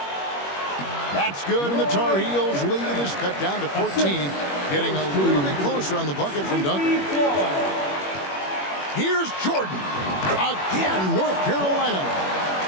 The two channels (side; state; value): right; late; 21 ms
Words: That's good, and the Tar Heels lead is cut down to 14. Getting a little bit closer on the bucket from Duncan. Here's Jordan. Again, North Carolina.